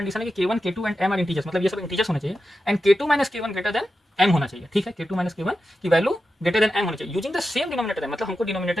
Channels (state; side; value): normal; both; correlation 0.90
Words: है कि k1, k2 and m are integers, मतलब ये सब इंटीजर्स होने चाहिए, and k2 minus k1 greater then m होना चाहिए। ठीक है, k2 माइनस k1 की वैल्यू ग्रेटर देन m होनी चाहिए यूजिंग द सेम डिनोमिनेटर, मतलब हमको